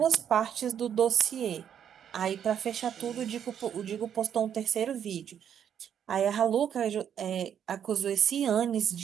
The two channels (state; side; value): quieter; left; 8.9 dB